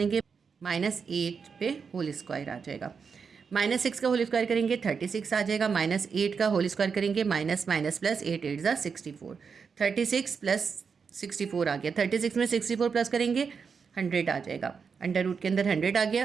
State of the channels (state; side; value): quieter; left; 5.8 dB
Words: -8 पे होल स्क्वायर आ जाएगा। -6 का होल स्क्वायर करेंगे 36 आ जाएगा। -8 का होल स्क्वायर करेंगे, माइनस माइनस प्लस 8 8 ज़ा 64, 36 प्लस 64 आ गया। 36 में 64 प्लस करेंगे 100 आ जाएगा। अंडर रूट के अंदर 100 आ